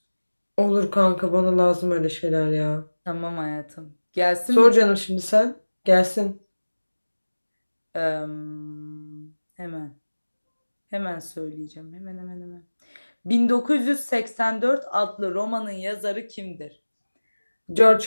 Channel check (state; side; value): inverted; both; correlation -1.00